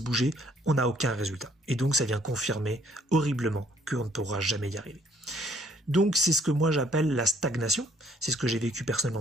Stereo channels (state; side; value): normal; both; correlation 0.65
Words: bouger, on n'a aucun résultat. Et donc ça vient confirmer horriblement qu'on ne pourra jamais y arriver. Donc c'est ce que moi j'appelle la stagnation, c'est ce que j'ai vécu